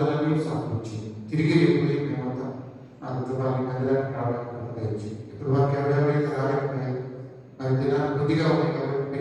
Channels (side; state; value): both; identical; correlation 1.00